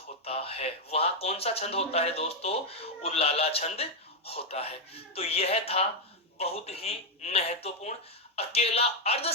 है। वहां कौन सा छंद होता है दोस्तों? उल्लाला छंद होता है। तो यह था बहुत ही महत्वपूर्ण अकेला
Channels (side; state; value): both; normal; correlation 0.01